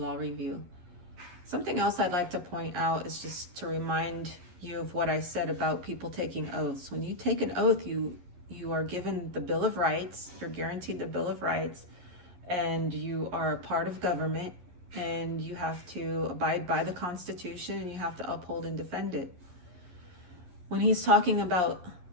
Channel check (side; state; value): left; late; 11 ms